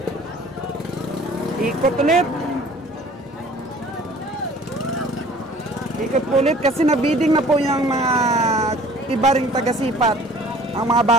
Ikot ulit. Ikot ulit kasi nabiding na po yung mga iba ring taga-sipat. Ang mga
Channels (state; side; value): normal; both; correlation 0.50